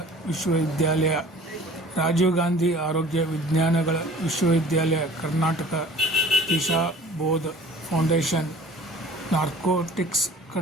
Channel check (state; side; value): normal; both; correlation 0.47